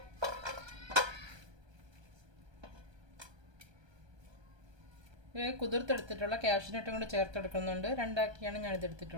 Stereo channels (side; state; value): left; late; 1.2 ms